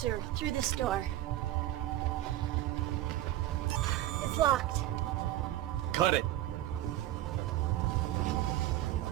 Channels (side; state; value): left; quieter; 14.2 dB